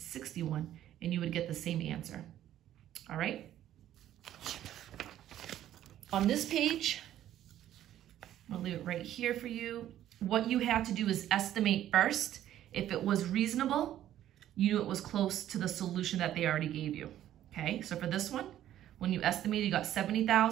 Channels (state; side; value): quieter; left; 12.1 dB